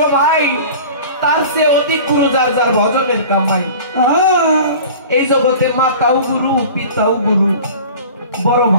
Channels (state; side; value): inverted; both; correlation -0.40